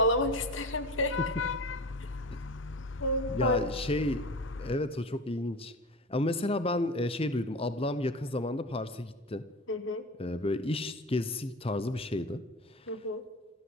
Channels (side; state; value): both; normal; correlation 0.31